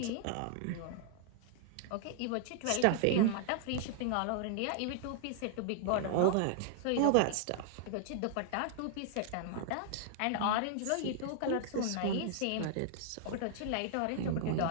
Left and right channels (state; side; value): different; both; correlation -0.01